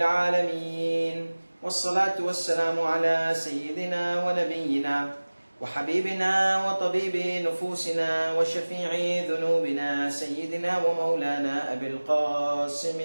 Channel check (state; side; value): inverted; both; correlation -1.00